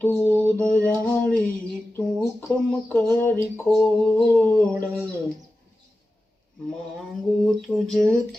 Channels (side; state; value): both; normal; correlation 0.94